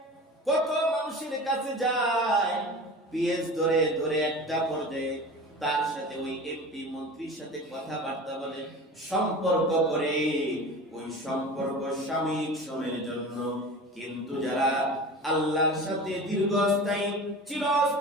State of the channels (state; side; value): normal; both; correlation 0.35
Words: কত মানুষের কাছে যায়, পিএস ধরে ধরে একটা পর্যায়ে তার সাথে ওই এমপি মন্ত্রীর সাথে কথাবার্তা বলে, সম্পর্ক করে। ওই সম্পর্ক সাময়িক সময়ের জন্য, কিন্তু যারা আল্লাহর সাথে দীর্ঘস্থায়ী